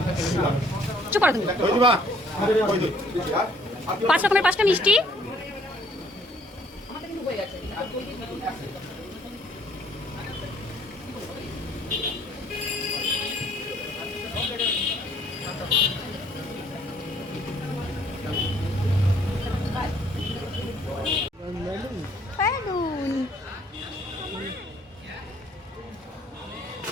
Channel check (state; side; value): normal; both; correlation 0.62